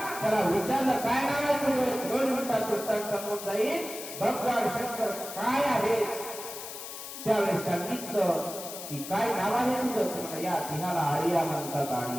त्याला विचारलं काय नाव आहे तुझं. 2 मिनिटात उत्तर समोर जाईल भगवान शंकर काय आहे. त्यावेळेस सांगितलं की काय नाव आहे तुझं. या तिहाला आर्या म्हणतात,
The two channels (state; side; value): noise; left; hiss, 10 dB below the sound